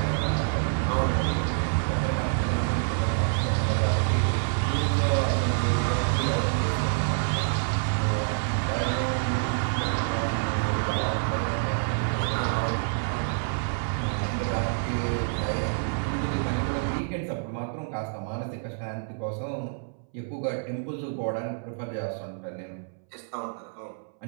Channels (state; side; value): silent; left; 60 dB below the other